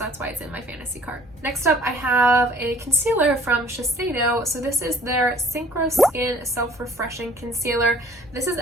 why it's in my fantasy cart. Next up, I have a concealer from Shiseido. So this is their Synchro Skin Self-Refreshing Concealer. This is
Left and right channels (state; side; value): normal; both; correlation 0.54